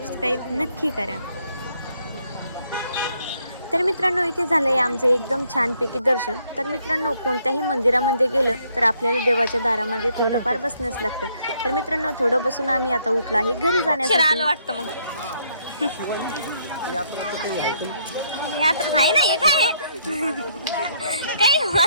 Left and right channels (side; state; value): both; inverted; correlation -0.70